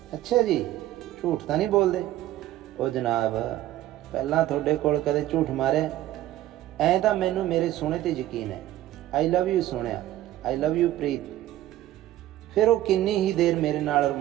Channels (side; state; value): left; quieter; 14.1 dB